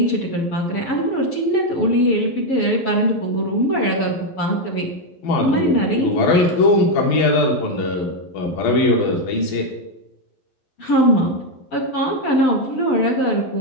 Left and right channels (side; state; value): right; late; 12 ms